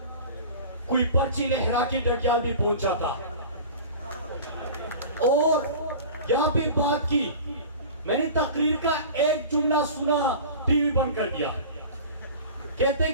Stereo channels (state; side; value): inverted; both; correlation -0.37